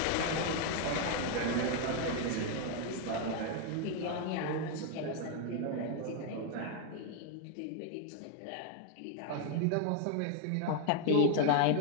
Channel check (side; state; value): both; different; correlation 0.00